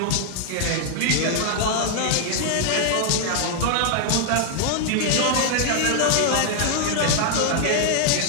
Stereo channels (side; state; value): both; different; correlation 0.00